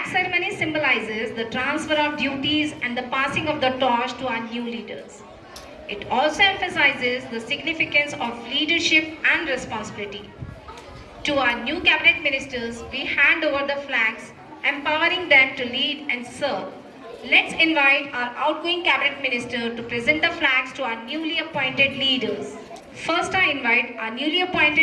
ceremony symbolizes the transfer of duties and the passing of the torch to our new leaders. It also emphasizes the significance of leadership and responsibility. To our new cabinet ministers, we hand over the flags, empowering them to lead and serve. Let's invite our outgoing cabinet minister to present the flags to our newly appointed leaders. First, I invite our newly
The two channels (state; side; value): identical; both; correlation 1.00